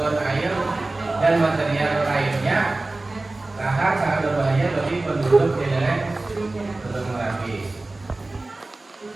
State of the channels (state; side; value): quieter; left; 3.1 dB